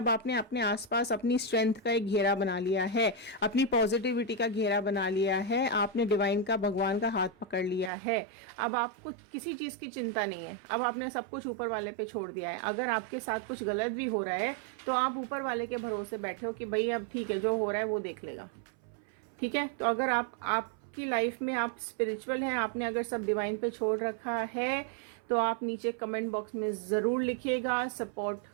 आपने अपने आसपास अपनी स्ट्रेंथ का एक घेरा बना लिया है, अपनी पॉजिटिविटी का घेरा बना लिया है, आपने डिवाइन का, भगवान का हाथ पकड़ लिया है। अब आपको किसी चीज़ की चिंता नहीं है, अब आपने सब कुछ ऊपर वाले पे छोड़ दिया है। अगर आपके साथ कुछ गलत भी हो रहा है तो आप ऊपर वाले के भरोसे बैठे हो कि भाई अब ठीक है, जो हो रहा है वो देख लेगा, ठीक है। तो अगर आपकी लाइफ में आप स्पिरिचुअल हैं, आपने अगर सब डिवाइन पे छोड़ रखा है, तो आप नीचे कमेंट बॉक्स में ज़रूर लिखिएगा सपोर्ट,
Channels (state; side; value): drops out; left; at 7.9 s